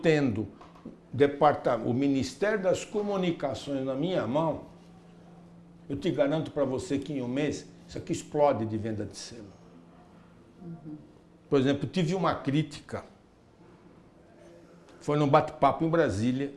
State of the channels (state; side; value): identical; both; correlation 1.00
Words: o Ministério das Comunicações na minha mão, eu te garanto para você que em um mês isso aqui explode de venda de selo. Por exemplo, tive uma crítica, foi num bate-papo em Brasília,